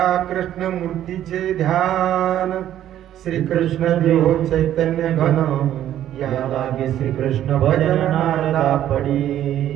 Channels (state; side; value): quieter; left; 11.7 dB